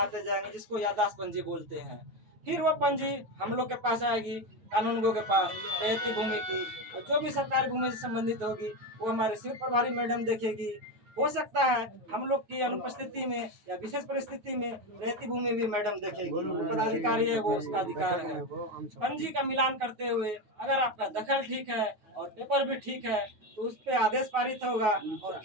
जाएंगे, जिसको याददाश्त पंजी बोलते हैं। फिर वो पंजी हम लोग के पास आएगी, कानूनगो के पास रहती भूमि की, और जो भी सरकारी भूमि से संबंधित होगी वो हमारे शिविर प्रभारी मैडम देखेगी। हो सकता है हम लोग की अनुपस्थिति में या विशेष परिस्थिति में रहती भूमि भी मैडम देखेगी। पदाधिकारी है वो उसका अधिकार है। पंजी का मिलान करते हुए अगर आपका दखल ठीक है और पेपर भी ठीक है तो उस पर आदेश पारित होगा और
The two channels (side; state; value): left; late; 9.4 ms